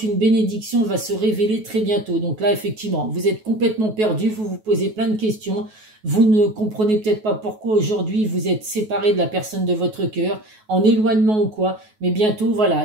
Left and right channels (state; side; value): late; left; 9.3 ms